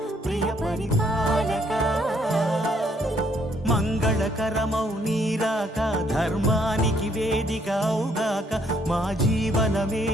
ప్రియ పరిపాలక మంగళకరమౌ నీరాక ధర్మానికి వేదికవుగాక మా జీవనమే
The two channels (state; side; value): normal; both; correlation 0.68